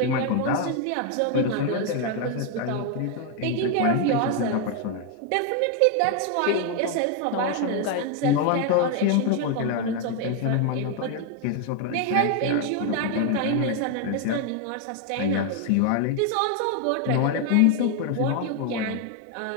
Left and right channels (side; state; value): both; different; correlation 0.01